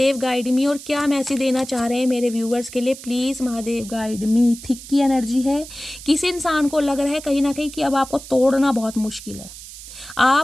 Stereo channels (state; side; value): noise; right; hiss, 15 dB below the sound